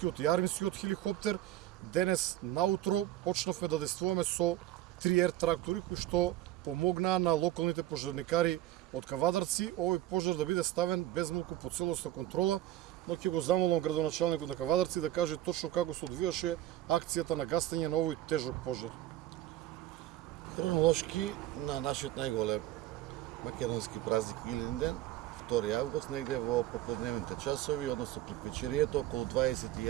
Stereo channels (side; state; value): left; quieter; 14.3 dB